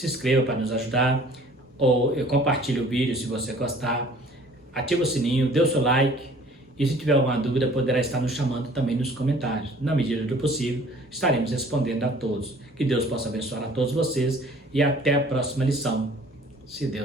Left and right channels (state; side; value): normal; both; correlation 0.52